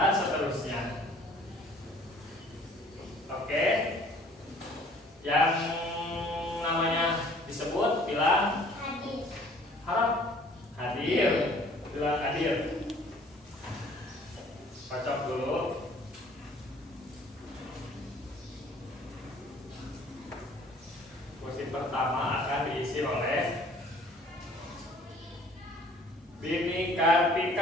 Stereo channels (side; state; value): both; normal; correlation 0.54